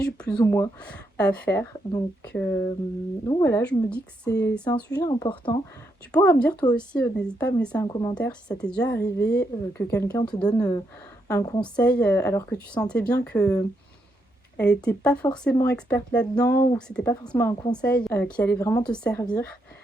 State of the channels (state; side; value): normal; both; correlation 0.79